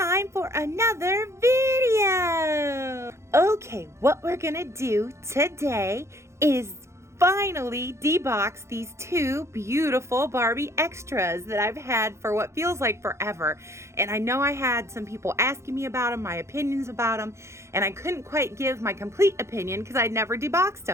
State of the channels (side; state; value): left; late; 0.13 ms